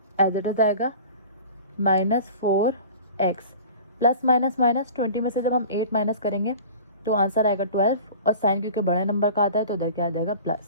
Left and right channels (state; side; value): inverted; both; correlation -0.41